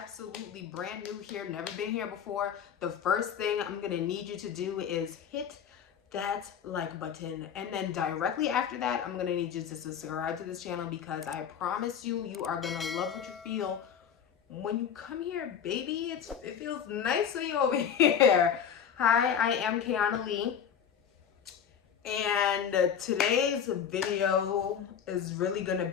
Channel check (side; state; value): right; quieter; 8.1 dB